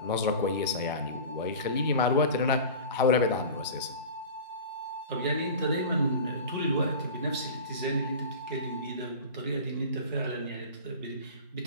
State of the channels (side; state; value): both; inverted; correlation -0.35